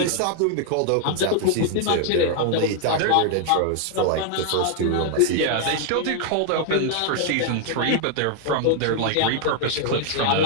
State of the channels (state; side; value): different; both; correlation 0.00